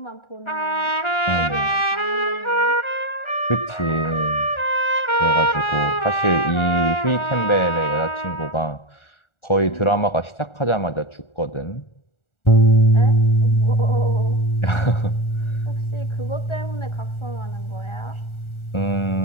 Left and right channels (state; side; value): late; right; 1.4 ms